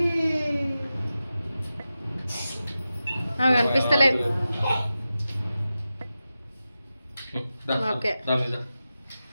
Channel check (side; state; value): both; inverted; correlation -0.93